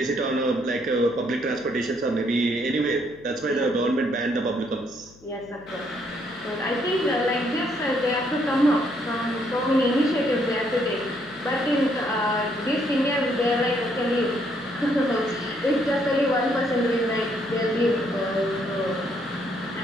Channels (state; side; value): noise; left; hum, 25 dB below the sound